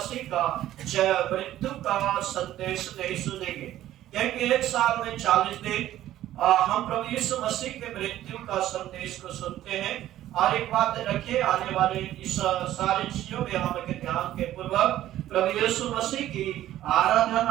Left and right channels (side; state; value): left; quieter; 13.3 dB